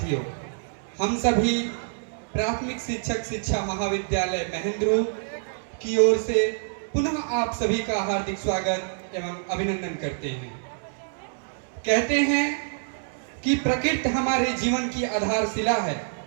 हम सभी प्राथमिक शिक्षक शिक्षा महाविद्यालय महेंद्रू की ओर से पुनः आप सभी का हार्दिक स्वागत एवं अभिनंदन करते हैं। कहते हैं कि प्रकृति हमारे जीवन की आधारशिला है,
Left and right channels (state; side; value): silent; left; digital silence